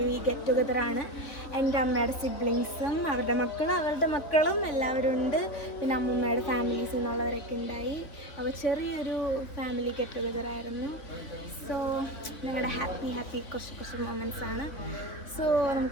ഗെറ്റ് ടുഗദറാണ്. എൻ്റെ അമ്മയുടെ സിബ്ലിങ്സും അവരുടെ മക്കളും എല്ലാവരും ഉണ്ട്. പിന്നെ അമ്മൂമ്മയുടെ ഫാമിലീസിൽ നിന്നുള്ളവരൊക്കെ ഉണ്ടായി. അപ്പോൾ ചെറിയൊരു ഫാമിലി ഗെറ്റ് ടുഗദറായിരുന്നു. സോ ഞങ്ങളുടെ ഹാപ്പി കുറച്ച് മൊമെൻറ്റ്സ് ആണ്. സോ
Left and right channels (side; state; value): right; late; 3.3 ms